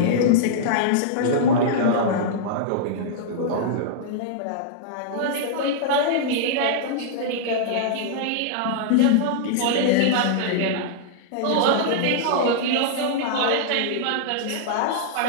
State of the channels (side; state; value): both; different; correlation -0.02